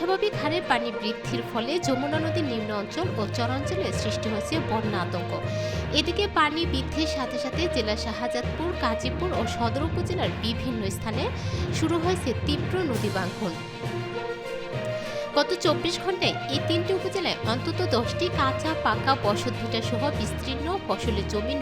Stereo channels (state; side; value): identical; both; correlation 1.00